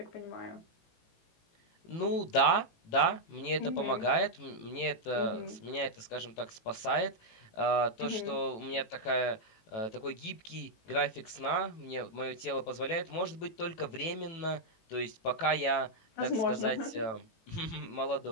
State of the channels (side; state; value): right; late; 18 ms